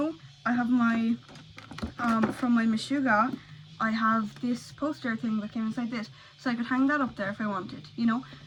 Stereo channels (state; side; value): identical; both; correlation 1.00